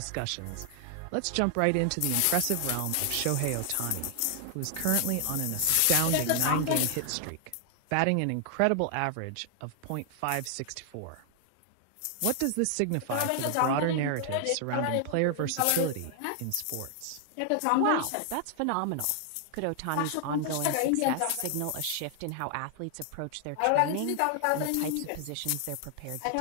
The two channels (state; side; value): different; both; correlation 0.00